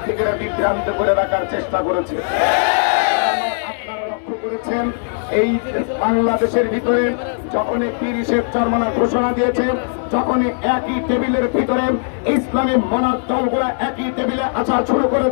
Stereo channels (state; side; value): silent; right; 64 dB below the other